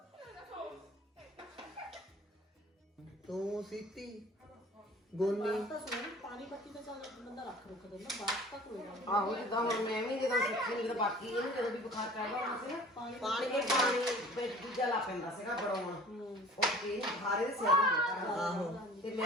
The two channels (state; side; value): normal; both; correlation 0.46